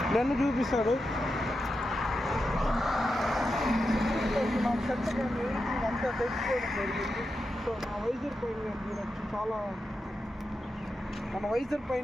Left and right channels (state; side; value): normal; both; correlation 0.88